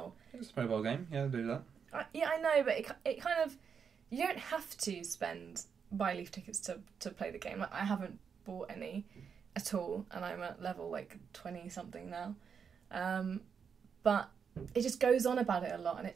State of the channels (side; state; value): left; quieter; 6.6 dB